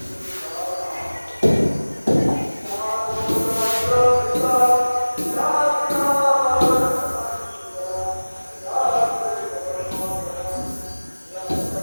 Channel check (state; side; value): inverted; both; correlation -1.00